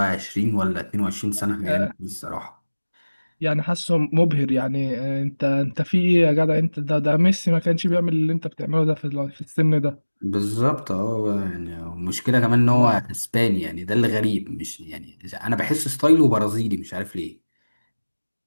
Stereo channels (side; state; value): both; inverted; correlation -1.00